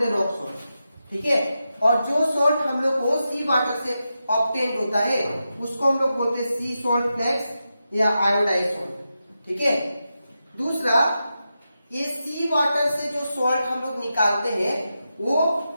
हैं रॉक सॉल्ट। ठीक है, और जो सॉल्ट हम लोग को सी वाटर से ऑब्टेन होता है उसको हम लोग बोलते हैं सी सॉल्ट फ्लेक्स या आयोडाइज सॉल्ट। ठीक है, दूसरा, ये सी वाटर से जो सॉल्ट हम लोग निकालते हैं वो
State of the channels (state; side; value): inverted; both; correlation -0.89